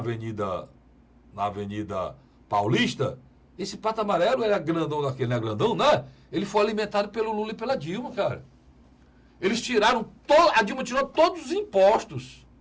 Paulista, esse pato amarelo era grandão daquele, não é grandão, né? Ele foi alimentado pelo Lula e pela Dilma, cara. Eles tiraram, a Dilma tirou todos os impostos.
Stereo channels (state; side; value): identical; both; correlation 1.00